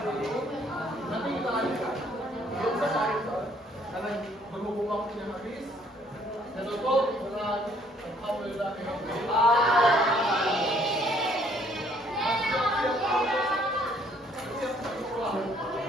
ini. Nanti kita lanjutkan. Belum selesai karena berhubung waktunya habis. Dan tutup dengan alhamdulillah.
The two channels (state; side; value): normal; both; correlation 0.63